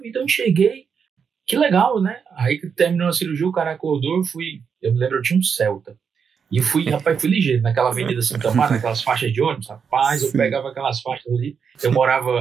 eu enxerguei. Que legal, né? Aí que terminou a cirurgia, o cara acordou, eu me lembro, eu tinha um Celta. E fui ligeiro, naquela Avenida Santa Marta, naquelas faixas de ônibus, rapaz, eu pegava aquelas faixas ali. Eu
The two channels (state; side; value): quieter; left; 6.5 dB